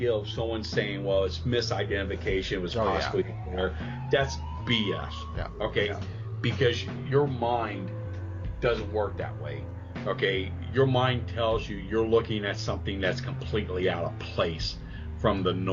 of someone saying, well, it's misidentification, it was possibly there, that's BS. Yeah. Okay. Yeah. Because your mind doesn't work that way. Okay. Your mind tells you you're looking at something that's completely out of place from the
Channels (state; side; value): identical; both; correlation 1.00